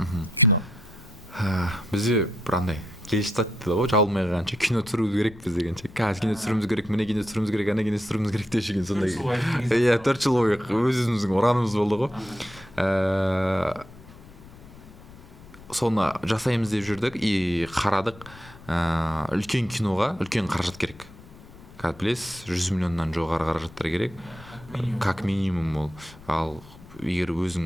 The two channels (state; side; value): noise; left; rumble, 20 dB below the sound